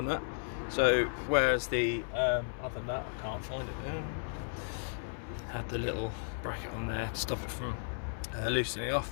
nut. So whereas the other nut, I can't find it there, had the little bracket on there to stop it from loosening off.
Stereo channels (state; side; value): silent; right; 55 dB below the other